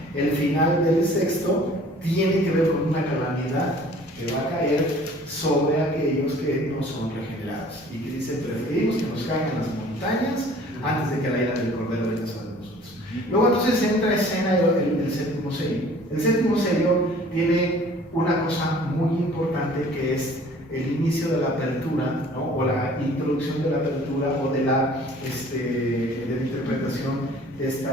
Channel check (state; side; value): normal; both; correlation 0.51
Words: el final del sexto tiene que ver con una calamidad que va a caer sobre aquellos que no son regenerados y que dice, preferimos que nos caigan las montañas antes de que la ira del Cordero venga sobre nosotros. Luego entonces entra en escena el séptimo sello. El séptimo sello tiene una cosa muy importante, que es el inicio de la apertura, ¿no? O la introducción de la apertura o de la interpretación de